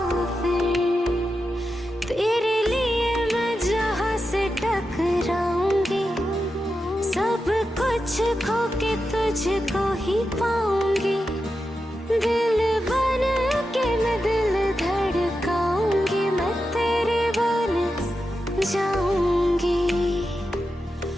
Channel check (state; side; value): normal; both; correlation 0.89